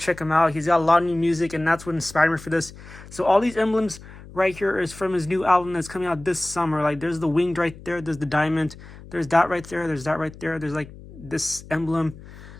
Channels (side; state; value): left; noise; hum, 18 dB below the sound